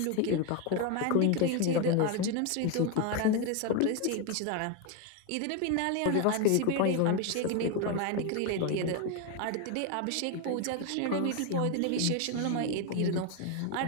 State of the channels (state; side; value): different; both; correlation 0.02